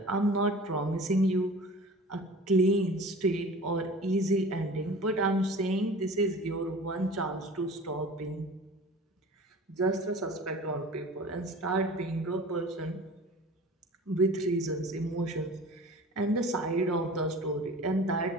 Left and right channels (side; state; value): both; normal; correlation 0.41